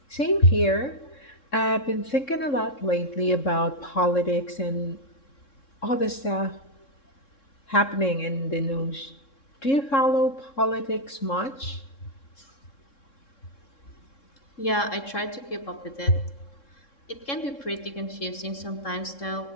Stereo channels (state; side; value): late; right; 3.7 ms